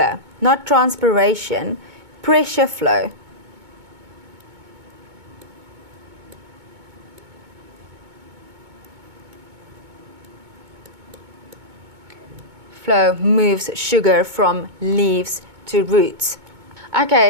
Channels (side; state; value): left; late; 2.2 ms